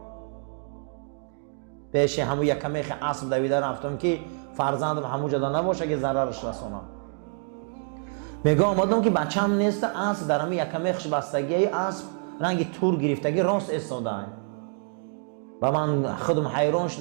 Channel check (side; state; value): left; silent; 60 dB below the other